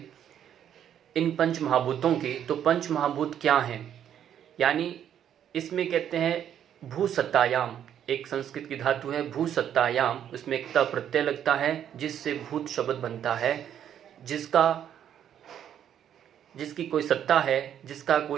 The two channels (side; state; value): left; quieter; 9.7 dB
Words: इन पंच महाभूतों की, तो पंच महाभूत क्या हैं? यानी इसमें कहते हैं भूसत्तायाम, एक संस्कृत की धातु है भूसत्तायाम, उसमें एक त प्रत्यय लगता है जिससे भूत शब्द बनता है। जिसकी कोई सत्ता है, जिसका